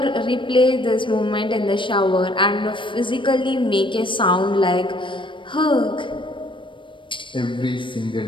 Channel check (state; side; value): late; right; 0.24 ms